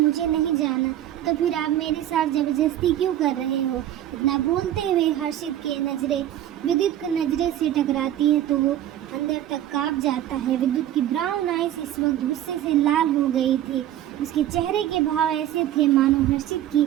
नहीं जाना, तो फिर आप मेरे साथ जबरदस्ती क्यों कर रहे हो? इतना बोलते हुए हर्षित के नज़रें विद्युत की नज़रें से टकराती है तो वो अंदर तक कांप जाता है। विद्युत की ब्राउन आइज इस वक्त गुस्से से लाल हो गई थी। उसके चेहरे के भाव ऐसे थे मानो हर्षित की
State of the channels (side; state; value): left; quieter; 12.2 dB